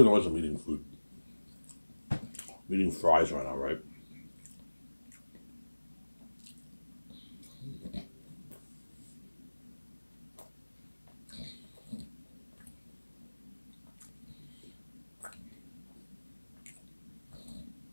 noise I'm eating food. I'm eating fries right now, right?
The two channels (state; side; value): inverted; both; correlation -1.00